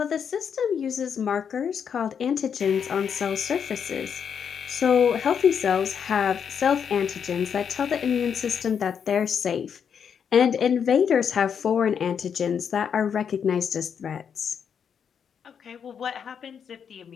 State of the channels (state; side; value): quieter; right; 7.4 dB